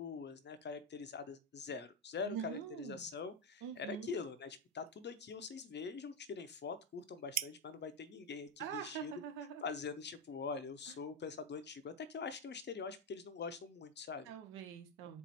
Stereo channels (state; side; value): normal; both; correlation 0.07